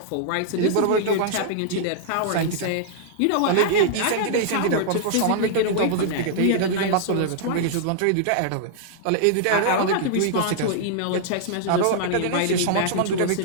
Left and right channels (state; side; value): different; both; correlation -0.01